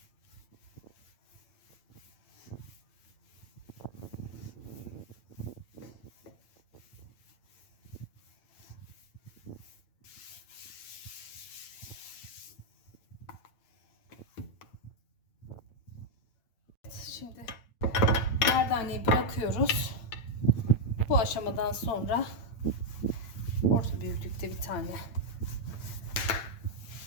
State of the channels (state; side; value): late; right; 8.9 ms